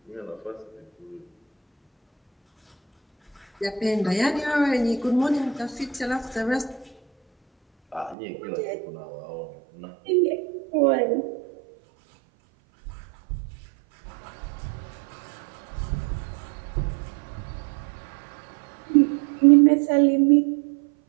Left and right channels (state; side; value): drops out; left; at 8.2 s